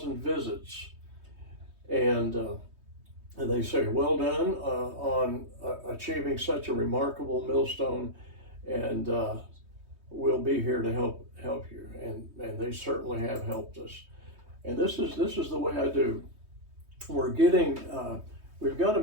visits, and they say, well done on achieving such a remarkable millstone, and we'll be here to help you. And they certainly have helped us. And this is the way I do. We've got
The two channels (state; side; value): late; left; 3.2 ms